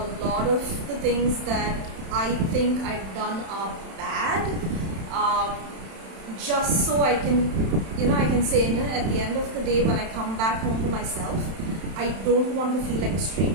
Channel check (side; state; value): left; late; 31 ms